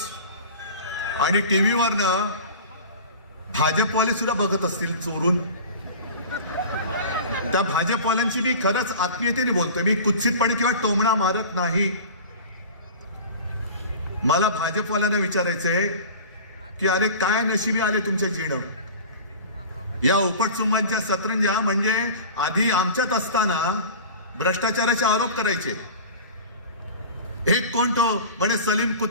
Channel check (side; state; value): both; inverted; correlation -0.38